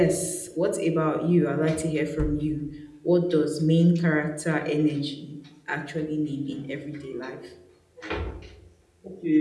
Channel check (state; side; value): identical; both; correlation 1.00